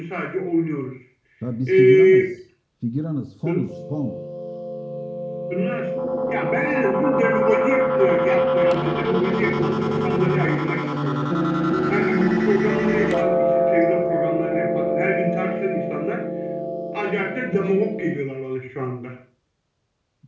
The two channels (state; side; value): identical; both; correlation 1.00